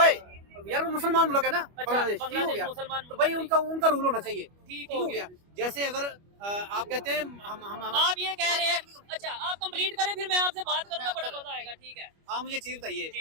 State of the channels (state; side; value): late; left; 25 ms